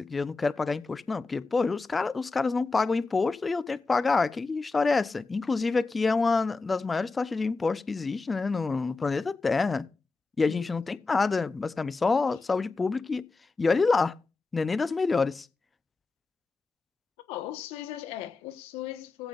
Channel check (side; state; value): right; quieter; 3.9 dB